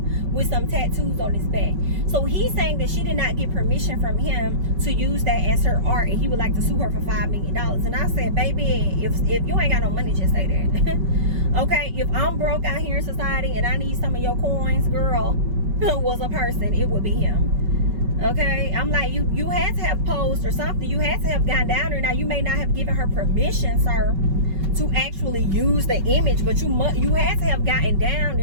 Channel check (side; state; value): left; late; 5.3 ms